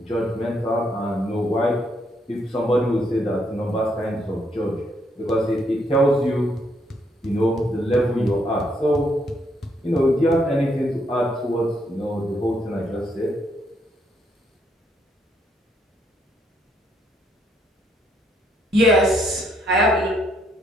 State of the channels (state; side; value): normal; both; correlation 0.73